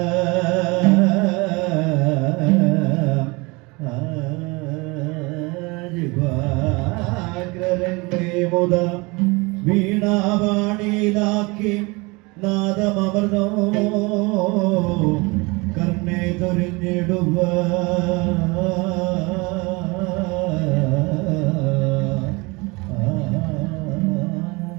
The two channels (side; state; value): left; quieter; 26.0 dB